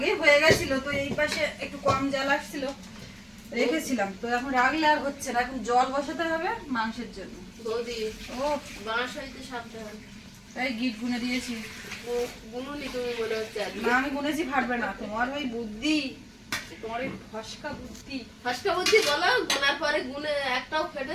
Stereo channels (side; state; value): both; identical; correlation 1.00